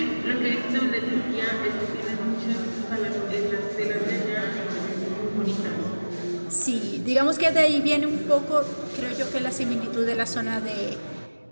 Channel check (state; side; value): inverted; both; correlation -1.00